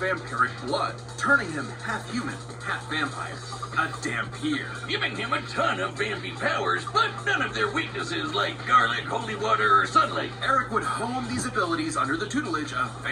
blood, turning him half human, half vampire. A Dampier, giving him a ton of vampy powers, but none of their weaknesses like garlic, holy water, or sunlight. Eric would hone these abilities under the tutelage of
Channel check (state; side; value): identical; both; correlation 1.00